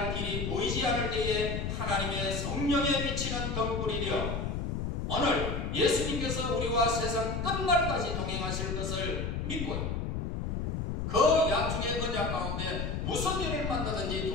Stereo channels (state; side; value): noise; left; rumble, 2 dB below the sound